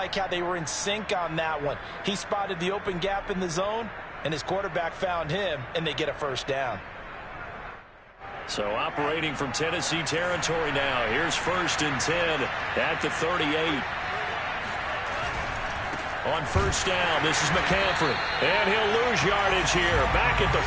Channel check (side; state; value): both; identical; correlation 1.00